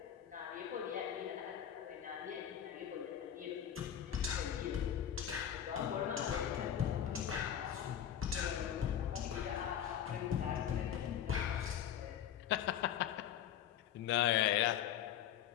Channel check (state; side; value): quieter; right; 9.9 dB